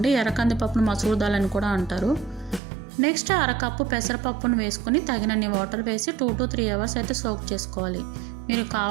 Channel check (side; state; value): left; drops out; at 2.6 s